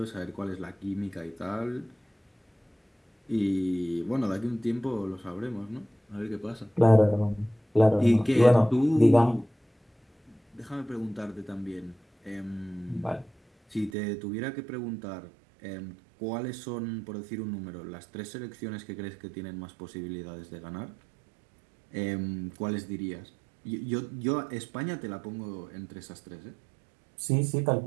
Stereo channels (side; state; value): left; drops out; at 13.9 s